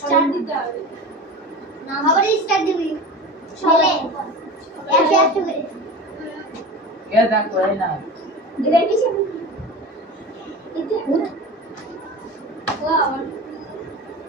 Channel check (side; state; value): both; normal; correlation 0.31